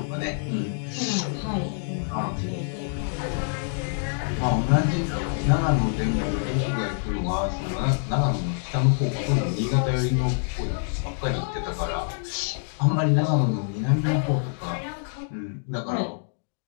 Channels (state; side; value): silent; right; digital silence